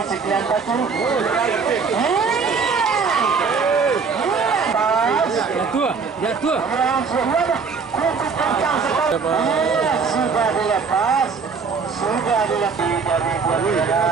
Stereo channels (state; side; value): quieter; left; 5.3 dB